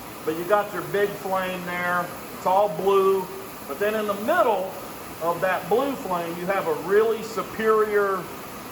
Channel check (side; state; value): both; identical; correlation 1.00